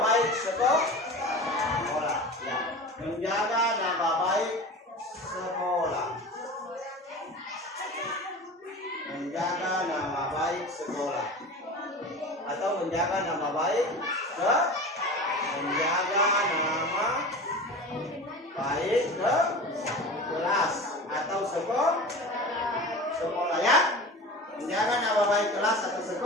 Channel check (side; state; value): both; normal; correlation 0.33